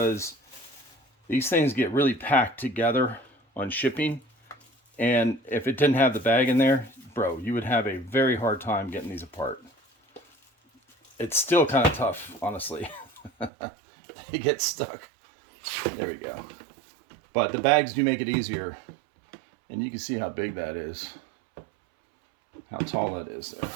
these things get really packed together on shipping. And if it didn't have the bag in there, bro, you would have a very hard time getting these apart. It's still kind of tough, honestly. They get stuck. There we go. But the bags do make it easier. And you can see how big that is. How tall that is there.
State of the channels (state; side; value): drops out; left; at 13.5 s